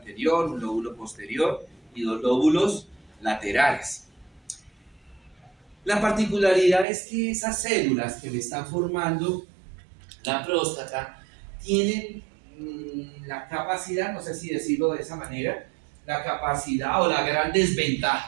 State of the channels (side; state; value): left; drops out; at 6.9 s